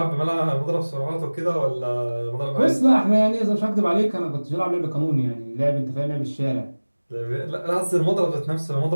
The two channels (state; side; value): inverted; both; correlation -1.00